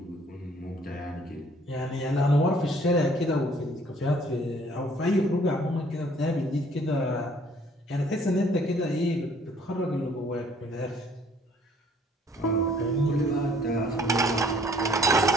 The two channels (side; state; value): both; normal; correlation 0.59